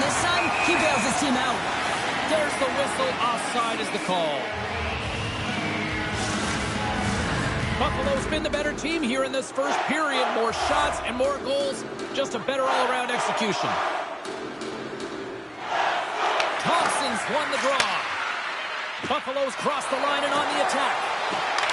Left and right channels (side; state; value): both; identical; correlation 1.00